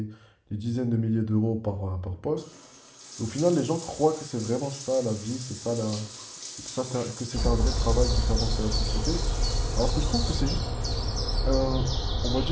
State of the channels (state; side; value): identical; both; correlation 1.00